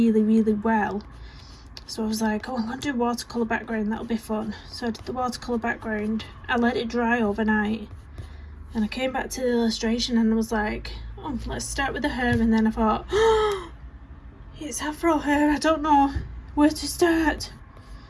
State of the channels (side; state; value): both; identical; correlation 1.00